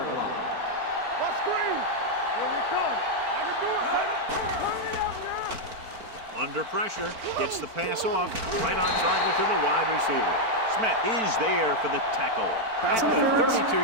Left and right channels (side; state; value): left; late; 4.5 ms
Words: line. What screen? Here we come. I can do it. Hurry up now. Under pressure, gets the pass off, right on target to the wide receiver. Smith is there for the tackle at the